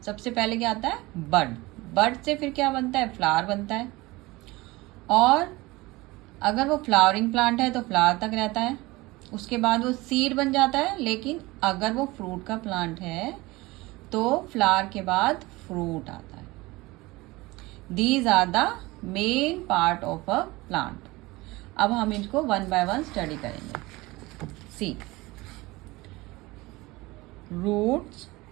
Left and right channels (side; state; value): left; quieter; 21.3 dB